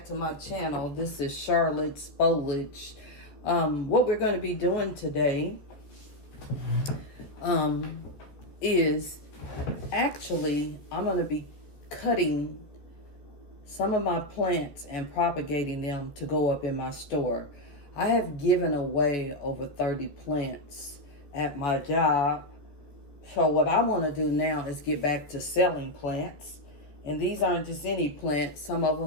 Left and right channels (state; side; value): late; right; 14 ms